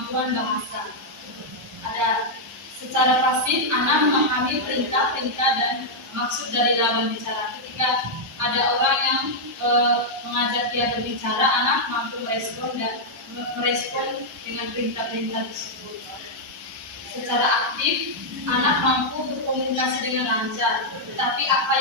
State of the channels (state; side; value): normal; both; correlation -0.04